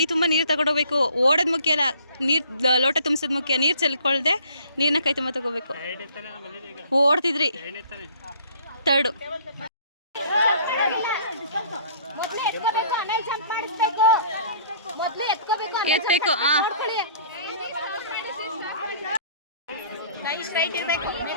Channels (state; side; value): inverted; both; correlation -0.55